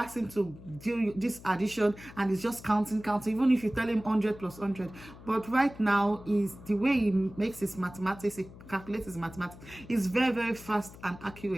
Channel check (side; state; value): left; noise; hum, 18 dB below the sound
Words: him to do this addition and he's just counting, even if you tell him 100 plus 100. But right now, is the way he makes his mathematics, he calculates his mathematics, is very fast and